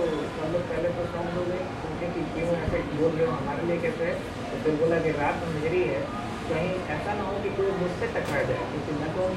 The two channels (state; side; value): identical; both; correlation 1.00